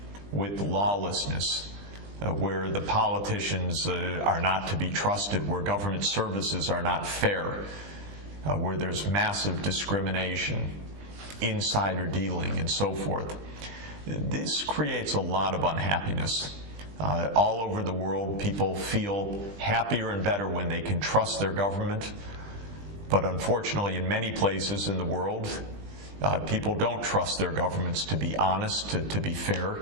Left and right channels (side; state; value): left; late; 20 ms